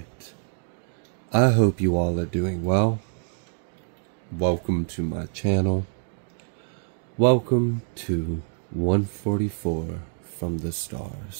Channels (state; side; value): silent; left; digital silence